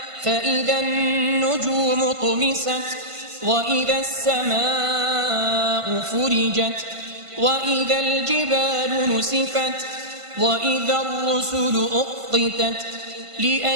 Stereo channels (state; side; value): late; left; 1.5 ms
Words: فإذا النجوم طمست وإذا السماء فرجت وإذا الجبال نسفت وإذا الرسل أقتت